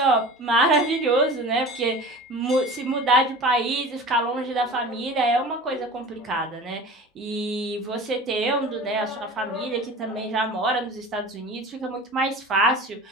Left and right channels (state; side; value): normal; both; correlation 0.37